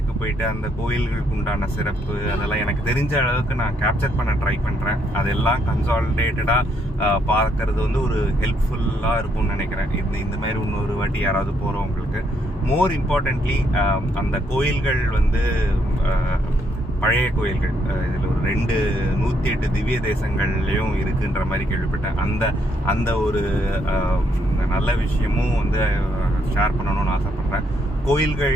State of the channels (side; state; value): both; normal; correlation 0.73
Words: போயிட்டு அந்த கோயில்களுக்கு உண்டான சிறப்பு அதெல்லாம் எனக்கு தெரிஞ்ச அளவுக்கு நான் கேப்சர் பண்ண ட்ரை பண்ணுறேன். அதெல்லாம் கன்சாலிடேட்டடாக பார்க்கறது வந்து ஒரு ஹெல்ப்ஃபுல்லாக இருக்கும்னு நினைக்கிறேன். இந்த மாதிரி இன்னொரு வாட்டி யாராவது போகிறவங்களுக்கு. மோர் இம்பார்ட்டன்ட்லி அந்த கோயில்கள் வந்து பழைய கோயில்கள், இதில் ஒரு 108 திவ்ய தேசங்கள்லையும் இருக்குன்ற மாதிரி கேள்விப்பட்டேன். அந்த ஒரு நல்ல விஷயமும் வந்து ஷேர் பண்ணணும்னு ஆசைப்பட்றேன்.